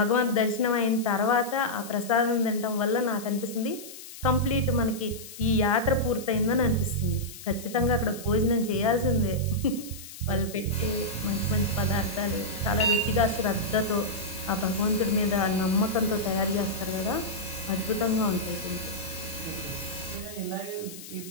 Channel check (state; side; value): noise; left; hiss, 14 dB below the sound